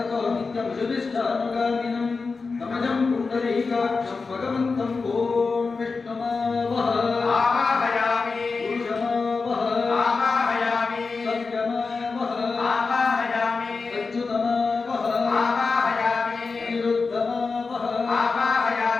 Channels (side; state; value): right; quieter; 4.4 dB